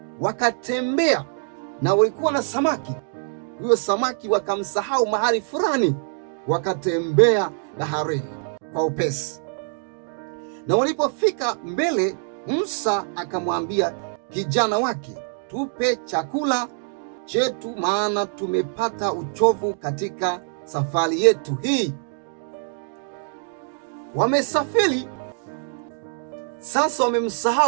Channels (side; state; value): left; silent; 63 dB below the other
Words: Wakatembea na walikuwa na samaki. Huyo samaki wakamsahau mahali fulani, wakatembea baharini kwa upesi. Na walipofika mbele, Musa akamwambia kijana wake, tupe chakula chetu, maana tumepata uchovu katika safari yetu hii. Wamesafiri sasa,